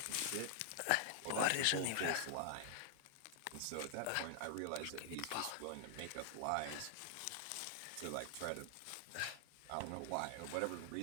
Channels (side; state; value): both; different; correlation -0.01